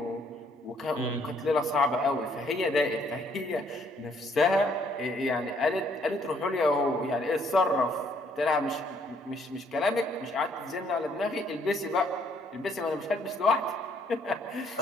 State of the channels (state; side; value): normal; both; correlation 0.67